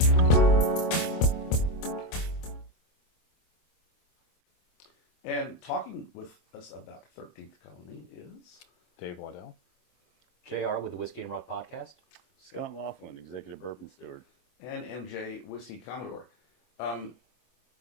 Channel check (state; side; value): late; right; 25 ms